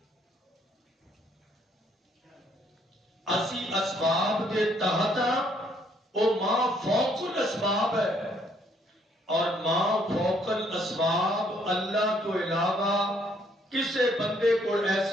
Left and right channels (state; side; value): normal; both; correlation 0.67